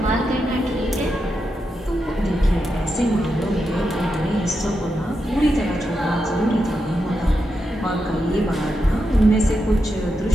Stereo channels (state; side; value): normal; both; correlation 0.86